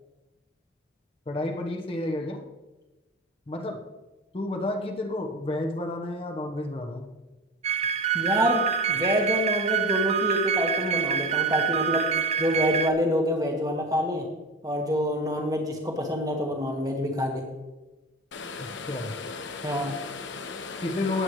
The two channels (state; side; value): normal; both; correlation 0.29